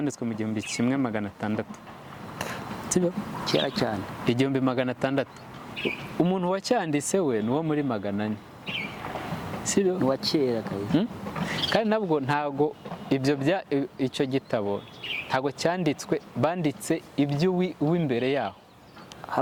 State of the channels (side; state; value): both; identical; correlation 1.00